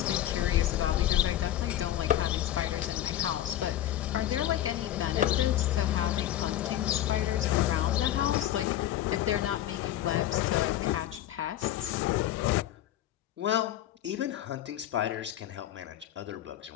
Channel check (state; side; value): quieter; right; 12.7 dB